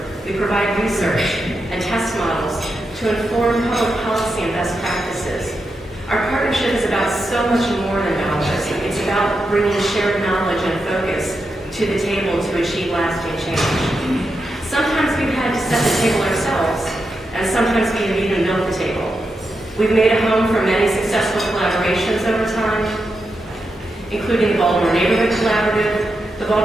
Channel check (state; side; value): normal; both; correlation 0.87